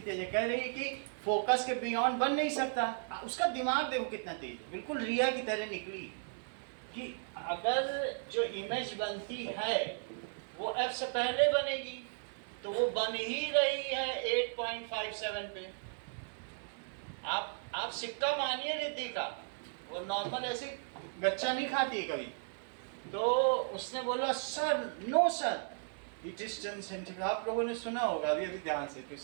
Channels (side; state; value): left; silent; 54 dB below the other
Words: तेज है, कह रही है कि फोकस के बियॉन्ड बन नहीं सकता। उसका दिमाग देखो कितना तेज है, बिल्कुल रिया की तरह निकली कि अगर जो इमेज बनती है वो f से पहले बनेगी, तो वो बन ही रही है 8.57 पे। आप सिक्का मानिए रिद्धि का, वो नॉर्मल ऐसे गच्चा नहीं खाती है कभी। तो उसने बोला sir, no sir, it is 10 centimetre. आप लोगों ने सुना होगा अभी अभी ध्यान से, तो